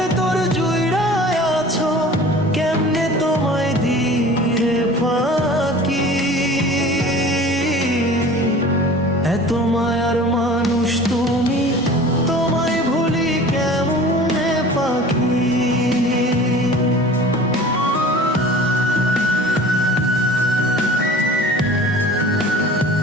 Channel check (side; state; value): both; normal; correlation 0.42